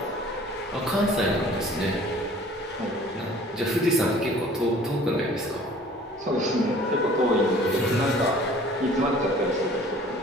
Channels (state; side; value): normal; both; correlation 0.50